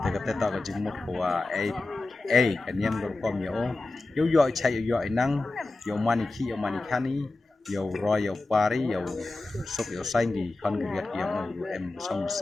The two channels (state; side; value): quieter; right; 3.2 dB